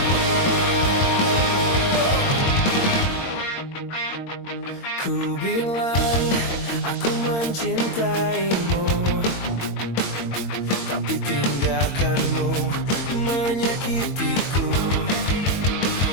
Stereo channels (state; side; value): late; right; 22 ms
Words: Ku bilang aku mencintaimu, tapi tindakanmu menyakitiku.